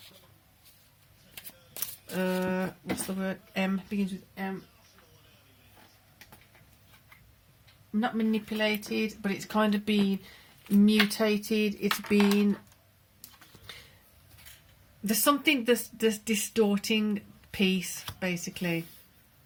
what's the word? Begins with M. Not manipulated, but it's kind of been mutated. It's been, there's something that's distorting peace basically.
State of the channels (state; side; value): identical; both; correlation 1.00